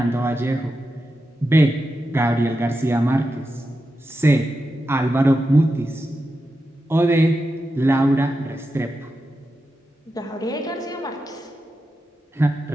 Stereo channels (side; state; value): both; normal; correlation 0.89